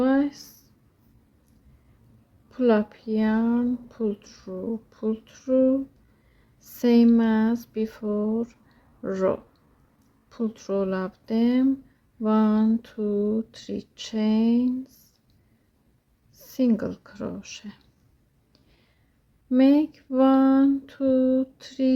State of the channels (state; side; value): identical; both; correlation 1.00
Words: pull up yarn, pull through, same as before row, pull through all of them, 1 2 3 chains, single crochet, make 1 2